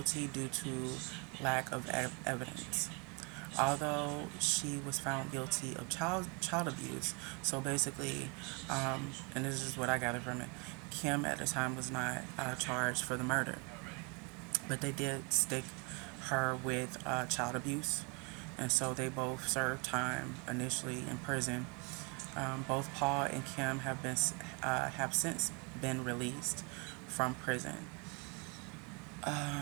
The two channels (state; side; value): quieter; left; 32.3 dB